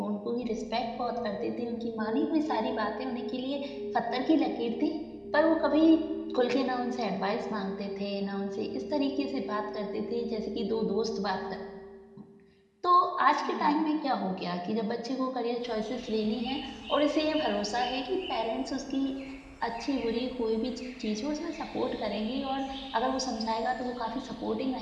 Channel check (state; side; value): identical; both; correlation 1.00